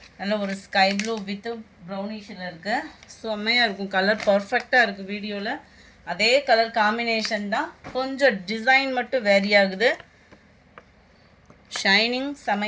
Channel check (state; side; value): identical; both; correlation 1.00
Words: நல்ல ஒரு ஸ்கை ப்ளூ வித் ப்ரௌனிஷில் இருக்குது. செம்மையாக இருக்கும். கலர் பர்ஃபெக்டாக இருக்குது. வீடியோவில் அதே கலர் காம்பினேஷன் தான், கொஞ்சம் டிசைன் மட்டும் வேரி ஆகுது. ஷைனிங்